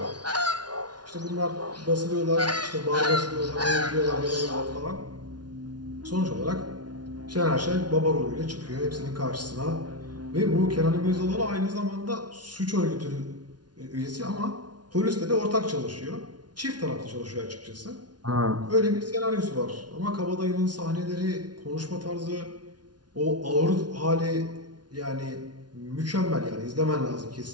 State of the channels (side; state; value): left; late; 0.69 ms